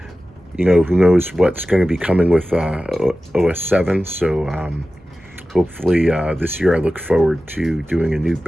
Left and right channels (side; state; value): both; normal; correlation 0.95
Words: you know, who knows what's going to be coming with OS 7. So hopefully this year I look forward to doing a new